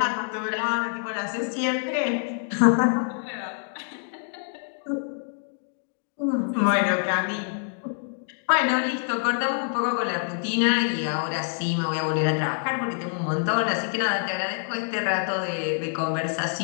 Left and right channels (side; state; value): right; silent; 61 dB below the other